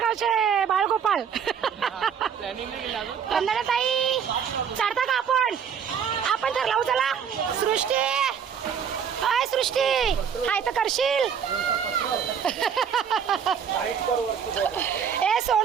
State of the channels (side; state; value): left; quieter; 7.5 dB